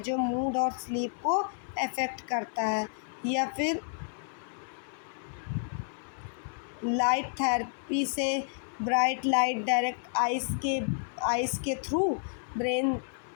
जो मूड और स्लीप को अफेक्ट करता है। या फिर लाइट थेरेपी से ब्राइट लाइट डायरेक्ट आइस के थ्रू ब्रेन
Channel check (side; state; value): right; silent; 57 dB below the other